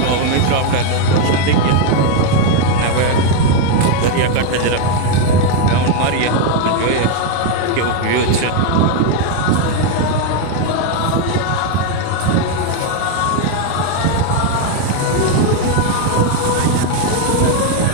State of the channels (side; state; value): both; different; correlation 0.01